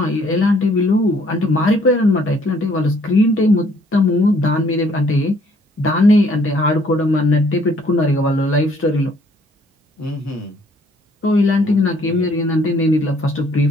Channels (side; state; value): both; normal; correlation 0.62